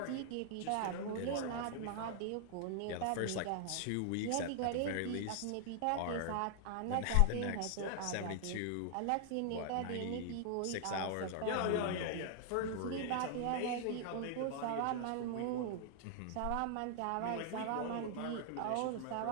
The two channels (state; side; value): different; both; correlation 0.00